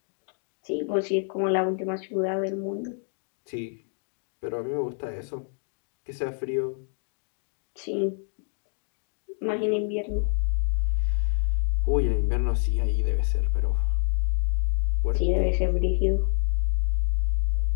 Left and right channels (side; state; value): right; silent; 60 dB below the other